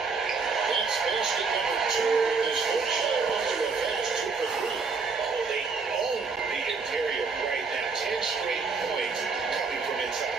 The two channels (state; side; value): quieter; left; 4.7 dB